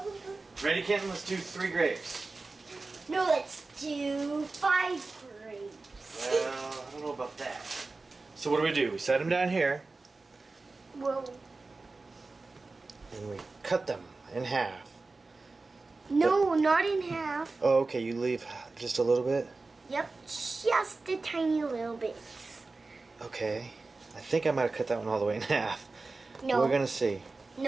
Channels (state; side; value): quieter; left; 3.6 dB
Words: Ready, Canton? Let's do 3 grapes. No, let's do 5 grapes. Well, I don't know about that. So what do? We set them down here. Well, And we cut them in half. no, not in half. Oh, okay, you leave just a little bit? Yep, just a tiny little bit. Okay. I think I might have cut that one all the way in half. No. We're gonna see.